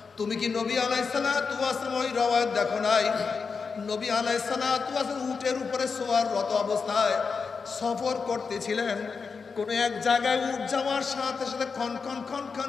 তুমি কি নবী আলাইহিস সালাতু ওয়াস সালাম ওই রওয়ায়াত দেখো নাই? নবী আলাইহিস সালাতু ওয়াস সালাম উটের উপরে সোয়াররত অবস্থায় সফর করতেছিলেন। কোন এক জায়গায় উট যাওয়ার সাথে সাথে খন খন খন খন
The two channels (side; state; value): right; quieter; 5.2 dB